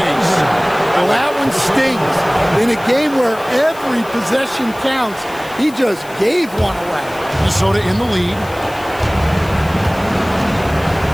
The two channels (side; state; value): left; noise; hiss, 21 dB below the sound